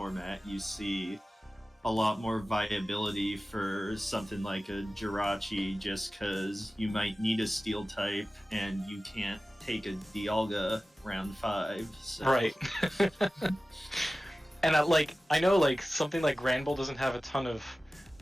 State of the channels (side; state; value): both; normal; correlation 0.96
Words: you see a lot more viability for something like a Jirachi, just because you might need a steel type and you can't take a Dialga round 5. So. Right. And I know like something like Granbull doesn't have a ton of